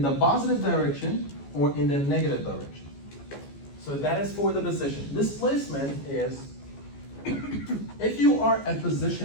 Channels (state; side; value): late; right; 14 ms